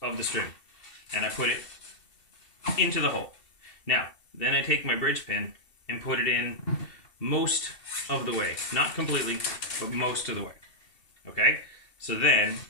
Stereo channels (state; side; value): late; right; 2.7 ms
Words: of the string and I put it into the hole. Now, then I take my bridge pin and put it in most of the way. Not completely, but most of the way. Okay? So then